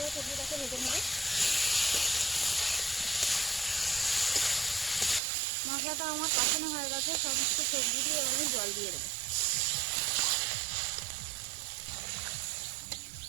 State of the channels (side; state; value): left; drops out; at 5.2 s